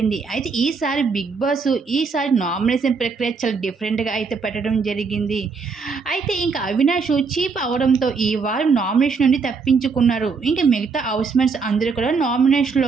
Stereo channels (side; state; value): left; quieter; 4.9 dB